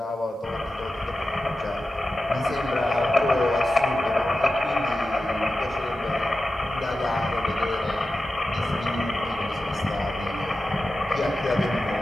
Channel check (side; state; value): both; normal; correlation 0.93